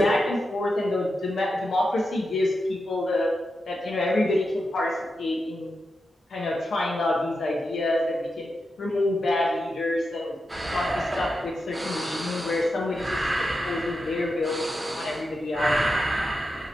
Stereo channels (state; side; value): normal; both; correlation 0.88